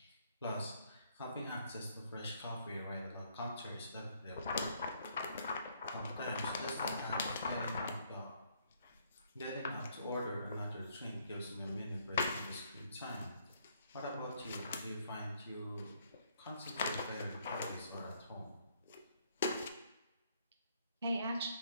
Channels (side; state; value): both; inverted; correlation -0.68